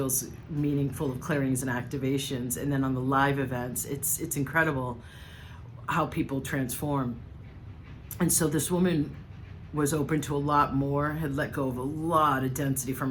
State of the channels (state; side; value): identical; both; correlation 1.00